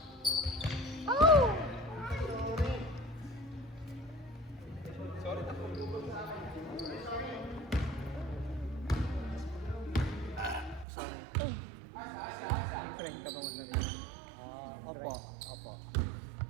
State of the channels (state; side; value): drops out; left; at 10.9 s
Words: Friend ka ba mag-nari? Opo.